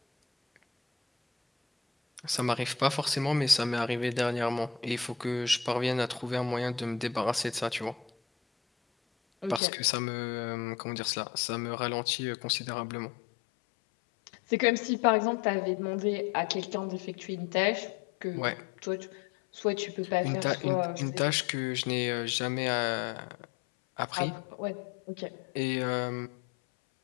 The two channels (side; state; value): right; drops out; at 9.6 s